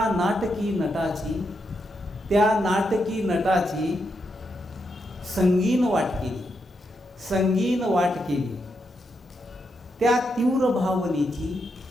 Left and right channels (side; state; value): both; normal; correlation 0.82